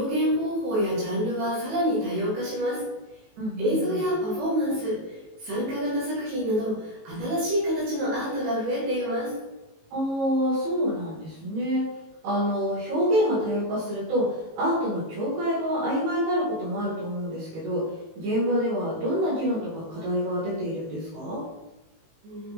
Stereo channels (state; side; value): late; left; 18 ms